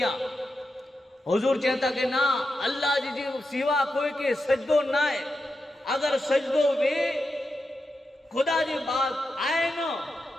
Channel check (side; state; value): both; normal; correlation 0.88